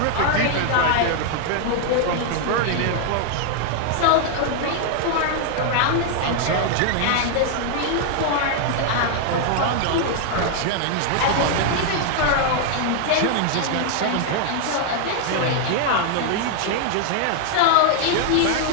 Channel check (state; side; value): different; both; correlation 0.00